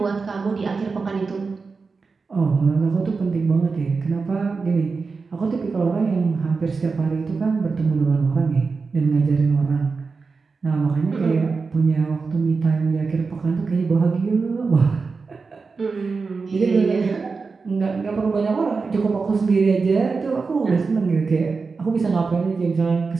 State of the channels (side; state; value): left; quieter; 4.5 dB